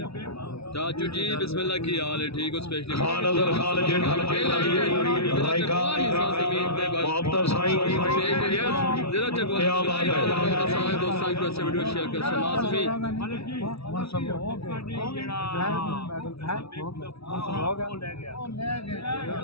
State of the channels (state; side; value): late; right; 0.78 ms